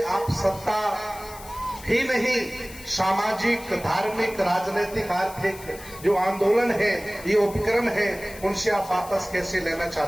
आप सत्ता ही नहीं, सामाजिक, धार्मिक, राजनीतिक, आर्थिक जो आंदोलन है, ये उपक्रम है, उनसे आप वापस कैसे लेना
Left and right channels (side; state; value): left; noise; hiss, 17 dB below the sound